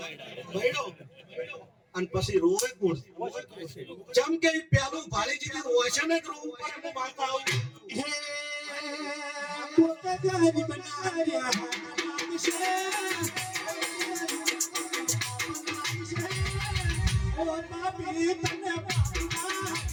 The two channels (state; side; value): identical; both; correlation 1.00